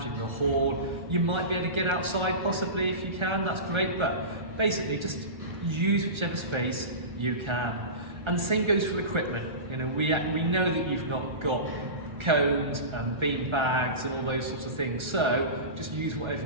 in the hall. You might be able to get outside possibly if you can, that's great, but basically just use whichever space you can. And the same goes for equipment. You know, we know that you've not got cones and bean bags and all those sorts of things, so just use whatever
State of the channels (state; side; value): late; left; 1.3 ms